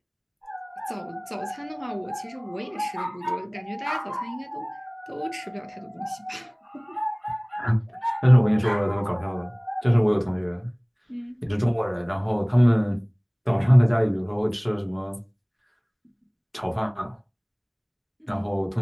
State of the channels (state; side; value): identical; both; correlation 1.00